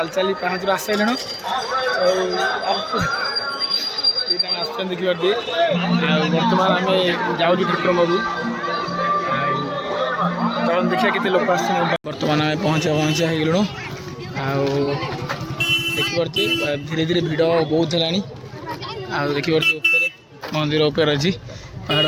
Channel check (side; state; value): both; identical; correlation 1.00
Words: चली पाँच आसलु देखिए बर्तमान आम जाऊँ ठाकुर बाबू चल देखिए केते लोक बर्तमान आम पहुँचा होगलु देखिपे धीरे धीरे भिड़ बहुत है देखिए मंदिर उपर अच्छी पहाड़